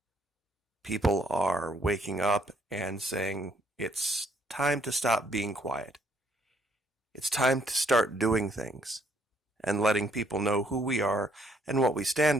People are waking up and saying it's time to stop being quiet. It's time to start doing things and letting people know who we are and what we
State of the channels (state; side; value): normal; both; correlation 0.68